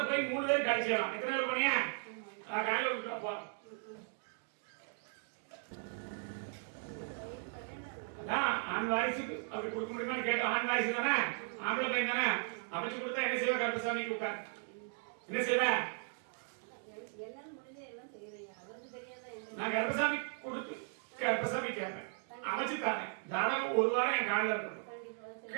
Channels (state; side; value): silent; left; 53 dB below the other